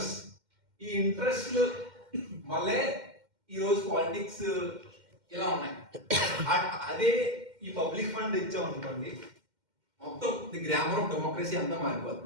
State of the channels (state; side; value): late; left; 2.1 ms